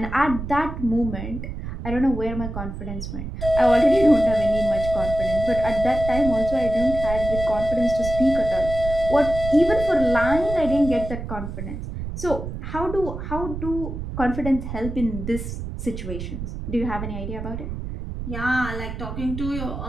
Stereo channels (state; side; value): noise; right; rumble, 7 dB below the sound